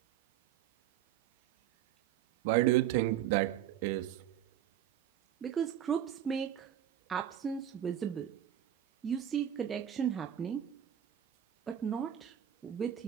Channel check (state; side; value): quieter; left; 10.7 dB